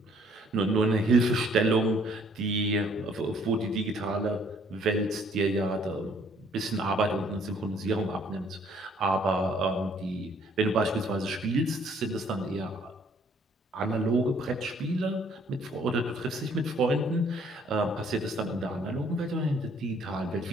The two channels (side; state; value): both; normal; correlation 0.62